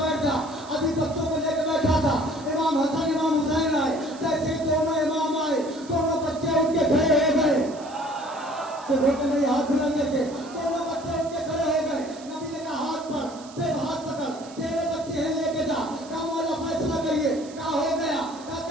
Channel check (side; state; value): right; noise; hiss, 20 dB below the sound